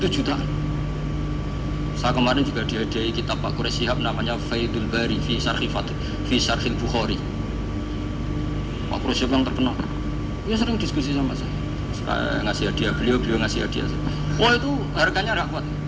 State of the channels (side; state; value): both; identical; correlation 1.00